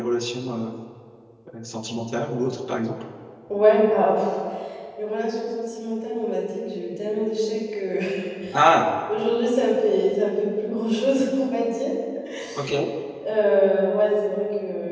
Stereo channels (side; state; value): both; identical; correlation 1.00